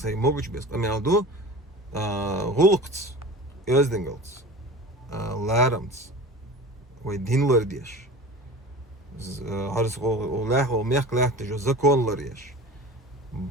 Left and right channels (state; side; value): normal; both; correlation 0.36